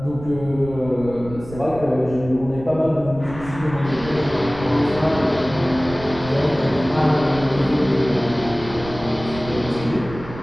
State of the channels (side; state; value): right; noise; rumble, 14 dB below the sound